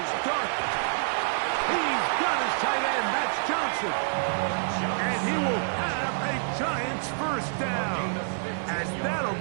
Dart. He's got his tight end, that's Johnson. And he will have a Giants first down, as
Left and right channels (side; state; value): left; silent; 60 dB below the other